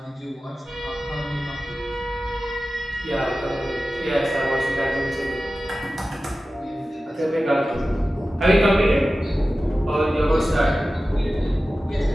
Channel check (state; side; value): normal; both; correlation 0.95